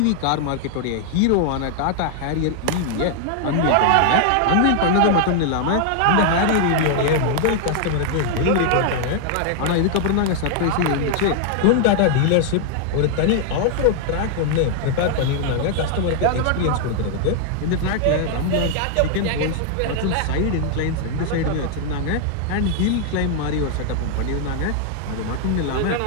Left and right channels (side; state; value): both; different; correlation 0.00